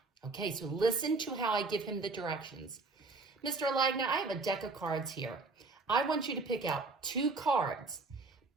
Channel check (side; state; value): left; quieter; 3.8 dB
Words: Okay, so listen to how I give him the directions. Mr. Alagna, I have a deck of cards here. I want you to pick out 2 cards,